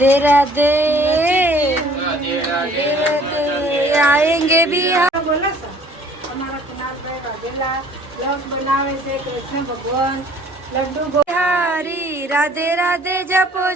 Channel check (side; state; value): both; normal; correlation 0.54